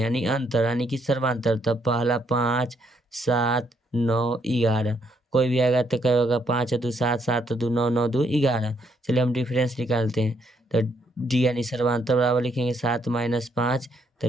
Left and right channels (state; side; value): normal; both; correlation 0.73